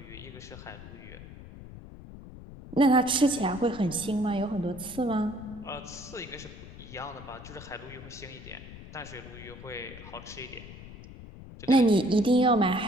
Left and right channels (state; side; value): noise; left; rumble, 15 dB below the sound